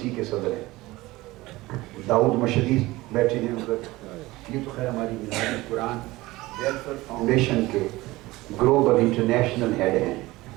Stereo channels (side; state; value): left; quieter; 19.4 dB